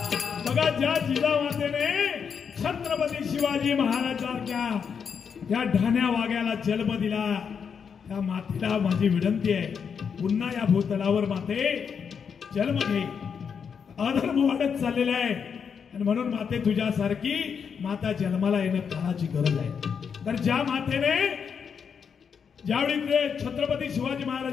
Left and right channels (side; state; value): right; quieter; 6.7 dB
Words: बघा ज्या जिजामातेने छत्रपती शिवाजी महाराजांच्या त्या ढाण्या वाघ्याला जन्म दिला, त्या मातेला माझी विनंती आहे, पुन्हा या भूतलावर माते जन्म घे. अधर्म वाढत चाललेला आहे आणि म्हणून माते तुझ्यासारखी माता जन्माला येणं काळाची गरज आहे. तर ज्या मातेने ज्यावेळी ते छत्रपती शिवाजी